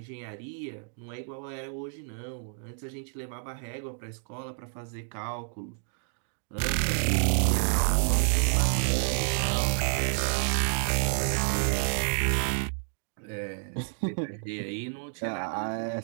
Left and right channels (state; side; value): silent; left; 58 dB below the other